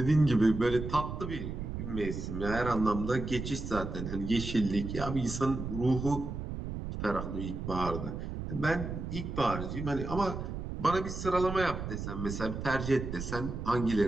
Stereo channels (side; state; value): right; noise; rumble, 6 dB below the sound